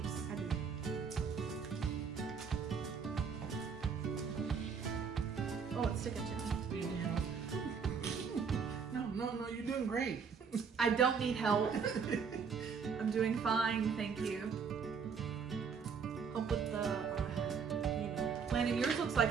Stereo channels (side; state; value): left; quieter; 6.1 dB